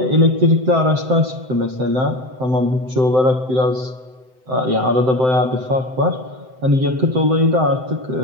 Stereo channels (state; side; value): late; left; 7.8 ms